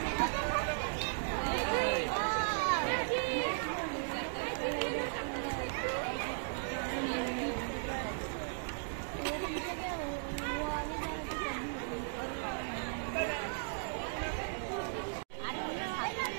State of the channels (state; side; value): silent; left; digital silence